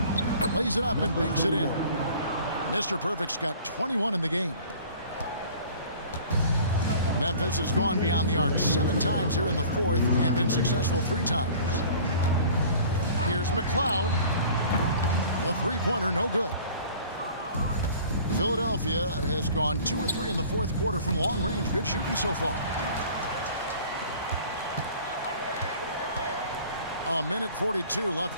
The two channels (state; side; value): inverted; both; correlation -0.47